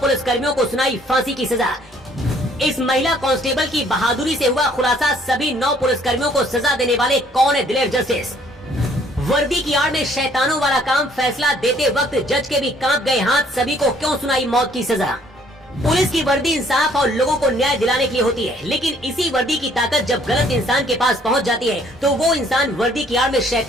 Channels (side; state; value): both; normal; correlation 0.61